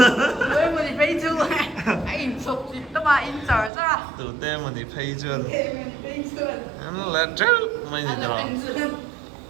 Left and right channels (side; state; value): left; drops out; at 3.7 s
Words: với mình phải chú anh chụp gì đó mà in giờ ra từ tem mà đi pay chưa mình phải chưa anh là chứ mày gì đó